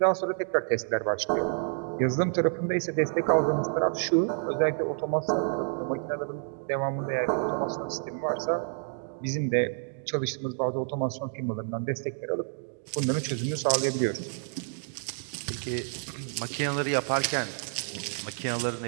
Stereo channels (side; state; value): left; silent; digital silence